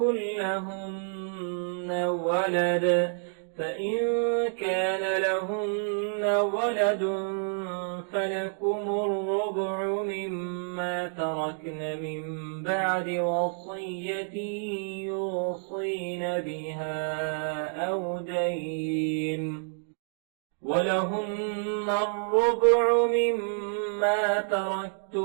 لهن ولد فإن كان لهن ولد فلكم الربع مما تركن من بعد وصية يوصين بها أو دين. ولهن الربع مما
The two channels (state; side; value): silent; left; digital silence